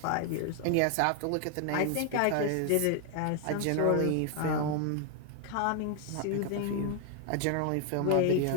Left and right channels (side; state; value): both; different; correlation 0.00